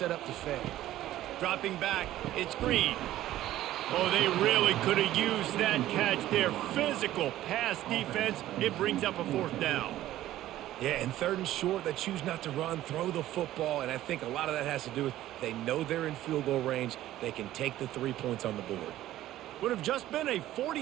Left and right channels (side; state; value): left; quieter; 14.1 dB